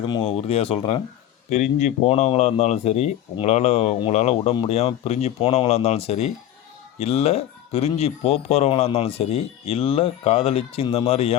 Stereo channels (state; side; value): quieter; right; 11.8 dB